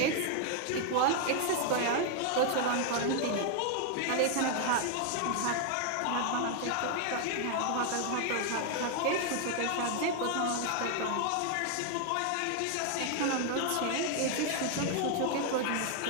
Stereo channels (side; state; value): both; different; correlation 0.00